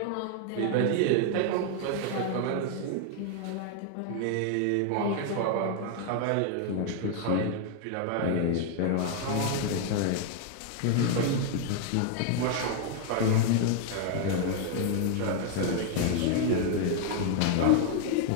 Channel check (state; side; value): different; both; correlation 0.00